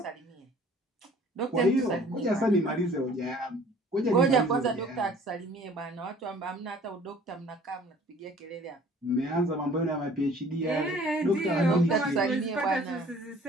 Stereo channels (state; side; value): normal; both; correlation 0.52